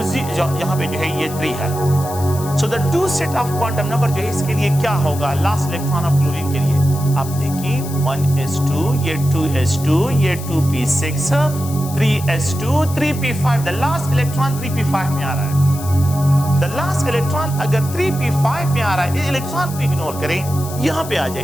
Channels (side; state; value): left; noise; hiss, 13 dB below the sound